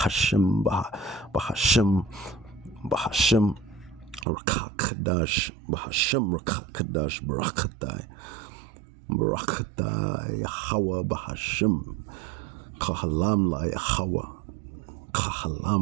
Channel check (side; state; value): left; drops out; at 4.2 s